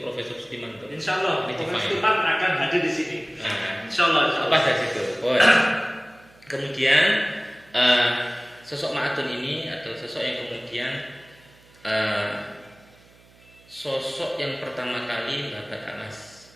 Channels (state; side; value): noise; right; hum, 28 dB below the sound